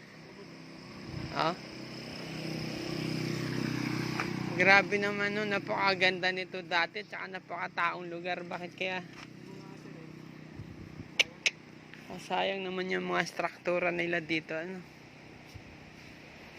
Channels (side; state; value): both; identical; correlation 1.00